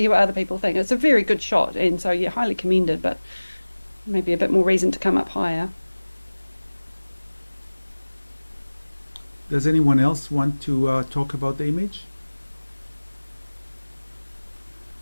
what other people think. It's a very good shot, and so yeah, highly commended, but maybe a bit more reason to come up higher. Does anyone else want to talk about the image?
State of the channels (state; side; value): inverted; both; correlation -1.00